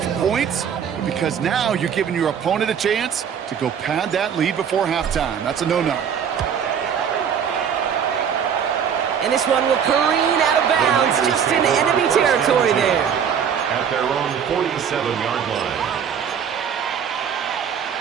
points, but because now you're giving your opponent a chance to go pad that lead before halftime. That's a no-no. And this one will careen out of bounds, just in enemy territory there. At their own 47-yard line.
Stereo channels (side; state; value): left; quieter; 7.8 dB